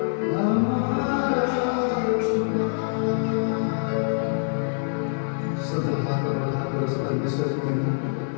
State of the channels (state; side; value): silent; right; digital silence